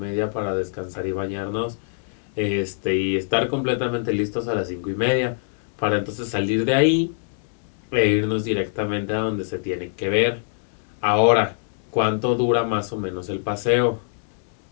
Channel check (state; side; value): silent; right; 63 dB below the other